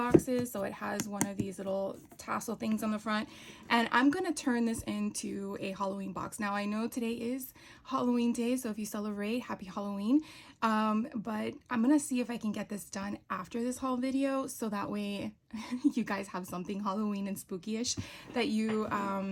So it has one of these little tassel things on the front, and I'm gonna turn this into a Halloween box. Now I know today is Halloween day, so if you celebrate, happy Halloween. But I'm gonna see if I can get this done after this haul video, so that way you guys have something Halloween and spooky-ish that you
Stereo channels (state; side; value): identical; both; correlation 1.00